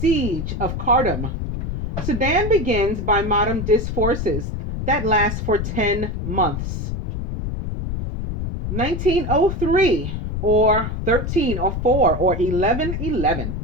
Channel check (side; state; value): left; noise; rumble, 4 dB below the sound